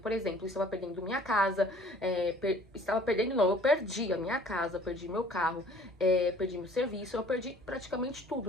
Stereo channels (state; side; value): normal; both; correlation 0.53